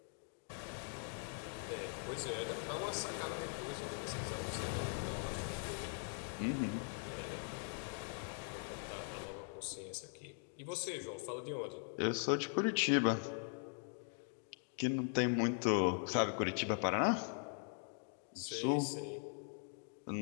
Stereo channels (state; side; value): silent; right; 50 dB below the other